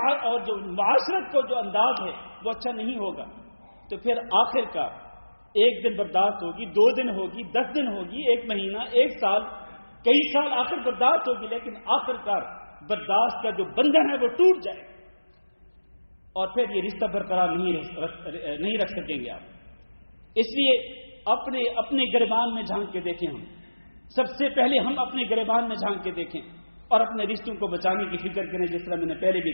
جو معاشرت کو جو انداز ہے وہ اچھا نہیں ہوگا، تو پھر آخر کا ایک دن برداشت ہوگی، 2 دن ہوگی، 10 دن ہوگی، 1 مہینہ، 1 سال، کئی سال آخر برداشت ہوگی، لیکن آخر کار برداشت کا جو بندھن ہے وہ ٹوٹ جائے گا، اور پھر یہ رشتہ برقرار نہیں رکھ سکیں گے آپ. اس لیے اپنے گریبان میں جھانک کے دیکھیں. ہم سب سے پہلے ہم اپنے گریبان میں جھانک کے دیکھیں اور اپنے رشتوں کو بچانے کی فکر کریں. جس طرح میں نے پہلے بھی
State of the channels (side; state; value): both; inverted; correlation -1.00